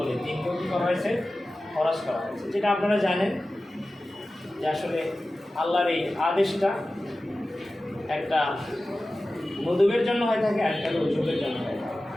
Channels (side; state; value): both; normal; correlation 0.95